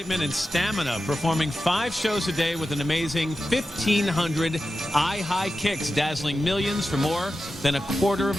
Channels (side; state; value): both; normal; correlation 0.92